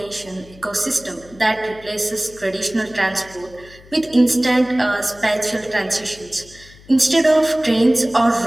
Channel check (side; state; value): left; noise; hum, 23 dB below the sound